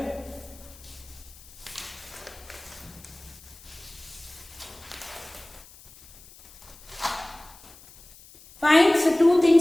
Fine, so 2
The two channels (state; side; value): noise; left; hiss, 22 dB below the sound